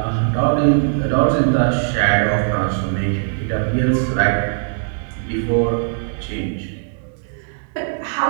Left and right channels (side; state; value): left; silent; digital silence